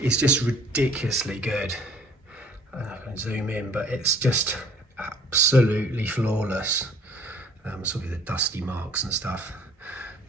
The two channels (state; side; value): normal; both; correlation 0.55